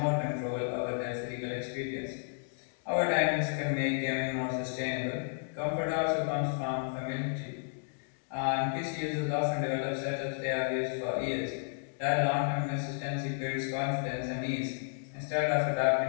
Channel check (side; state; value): right; silent; digital silence